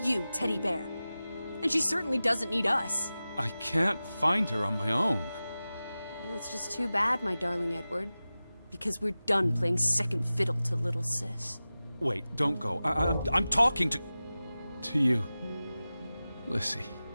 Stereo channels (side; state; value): both; inverted; correlation -0.96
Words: Teddy Bear. And she certainly doesn't need us. I can't find her on my own. Well, it's just too bad, my darling Edward. Because we're done playing second fiddle to little sis. Wait, don't go. I'm talking to you, Lissie.